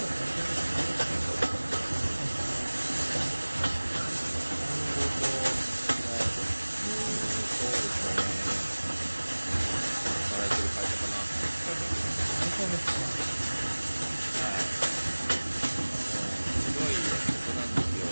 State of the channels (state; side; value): inverted; both; correlation -1.00